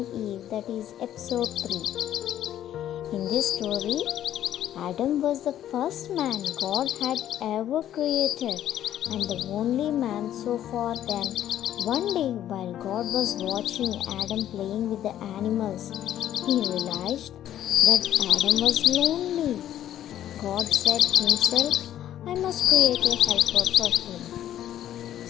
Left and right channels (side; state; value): right; quieter; 11.6 dB